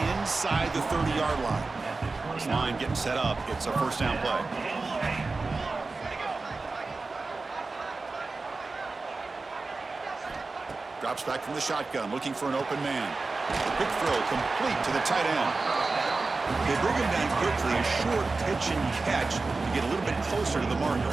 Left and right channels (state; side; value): quieter; left; 3.7 dB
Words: inside the 30-yard line. This line getting set up. It's a first down play. Drops back from the shotgun, looking for an open man. Quick throw, complete to the tight end. They bring him down quickly, a short pitch and catch to get a little bit closer to the marker.